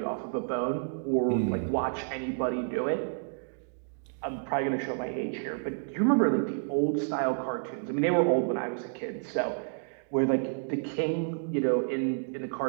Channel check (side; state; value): left; silent; digital silence